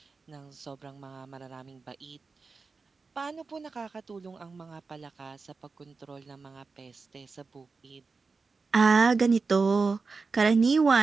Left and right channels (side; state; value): left; quieter; 4.4 dB